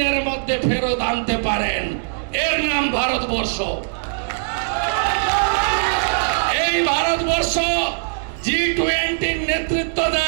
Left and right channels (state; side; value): silent; left; digital silence